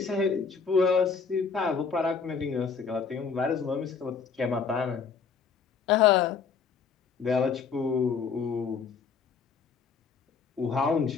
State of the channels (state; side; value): quieter; right; 5.7 dB